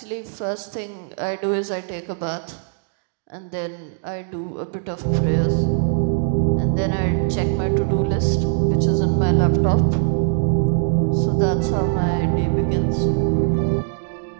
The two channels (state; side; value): silent; left; digital silence